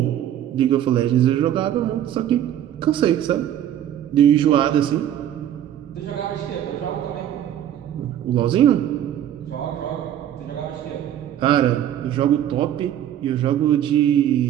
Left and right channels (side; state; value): left; quieter; 11.0 dB